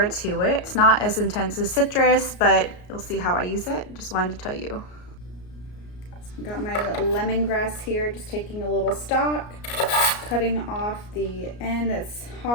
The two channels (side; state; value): right; late; 33 ms